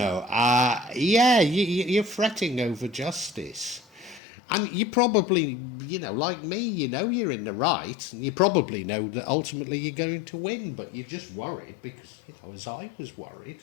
yeah, you're fretting over justice. And you probably, you know, like me, you know you're in the right, and you probably know that ultimately you're going to win, but you're just worried because, you know, as I was worried,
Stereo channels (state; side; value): drops out; right; at 4.2 s